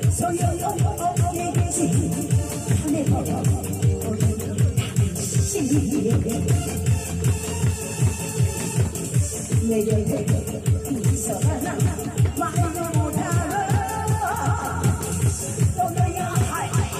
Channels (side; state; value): both; identical; correlation 1.00